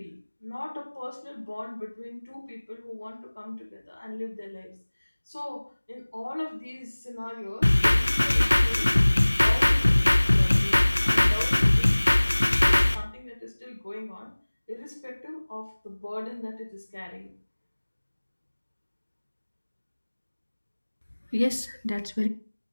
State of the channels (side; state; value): both; inverted; correlation -1.00